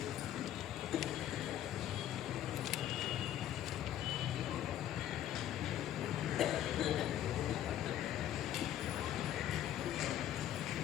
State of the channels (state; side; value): quieter; right; 11.6 dB